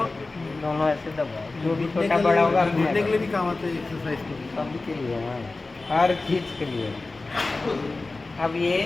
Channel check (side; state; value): right; quieter; 3.4 dB